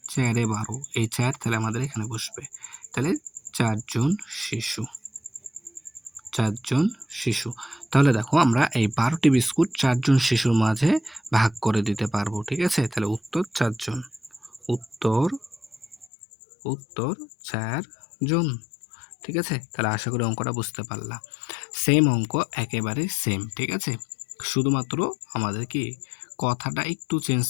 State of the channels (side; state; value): right; drops out; at 16.1 s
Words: চারে ১২, এই ৪ তাহলে আমাদের এখানে বসবে। তাহলে ৪ জন শিশু, ৪ জন শিশু। তাহলে দেখো আমরা এই ১২ টি বিস্কুট ৪ জন শিশুর মাঝে ভাগ করে দিতে পারবো, ঠিক আছে? তাহলে উত্তর ৪ জন। উত্তর উত্তর ৪ জন, ঠিক আছে? তাহলে আশা করি অঙ্কটা বুঝতে পারলা। সেম অঙ্ক, একেবারে সেম, ঠিক আছে? শুধুমাত্র আমাদের কি কথাটা একটু চেঞ্জ